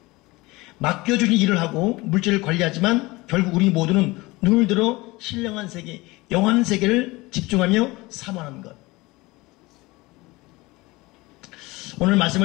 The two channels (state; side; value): quieter; right; 21.8 dB